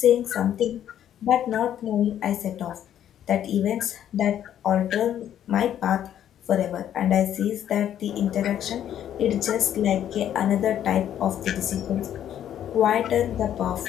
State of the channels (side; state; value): right; quieter; 10.5 dB